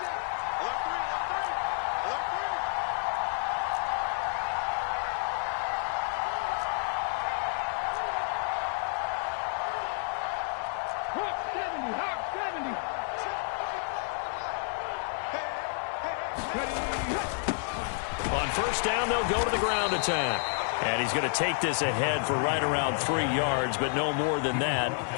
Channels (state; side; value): silent; right; 58 dB below the other